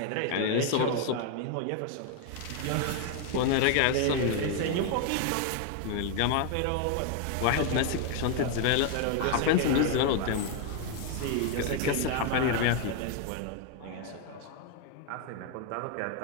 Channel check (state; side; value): different; both; correlation 0.01